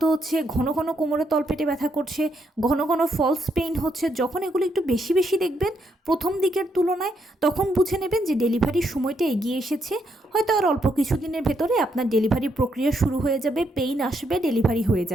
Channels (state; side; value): normal; both; correlation 0.77